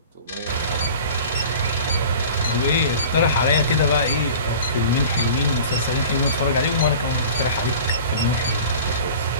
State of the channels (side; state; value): both; inverted; correlation -0.40